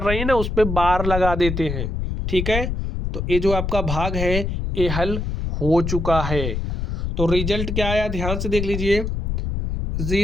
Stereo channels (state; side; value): noise; left; rumble, 3 dB below the sound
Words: रही हैं ना, उस पर बार लगा देते हैं। ठीक है, तो ये जो आपका भाग है ये हल हो चुका है। तो रिजल्ट क्या आया, ध्यान से देख लीजिए।